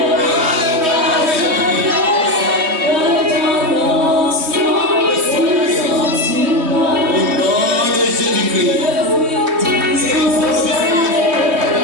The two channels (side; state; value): left; late; 3.1 ms